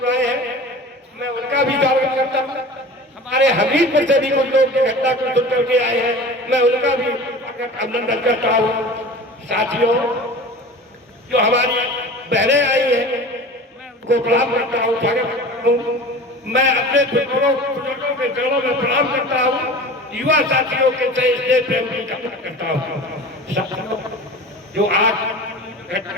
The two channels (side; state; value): both; normal; correlation 0.37